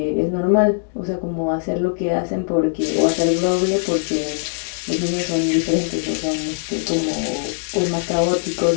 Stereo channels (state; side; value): silent; right; digital silence